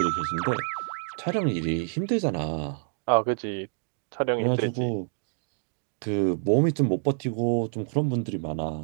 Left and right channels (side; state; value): left; silent; digital silence